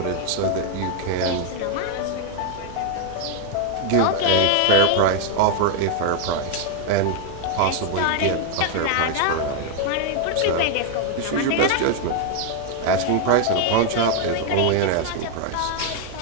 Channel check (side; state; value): both; different; correlation 0.00